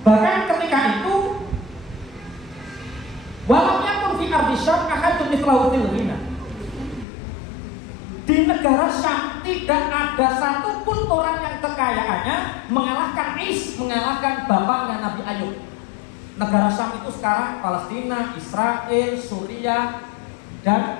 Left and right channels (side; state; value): right; drops out; at 7.1 s